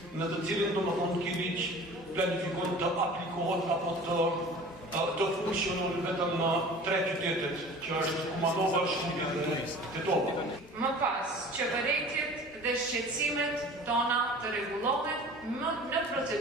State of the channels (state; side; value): normal; both; correlation 0.42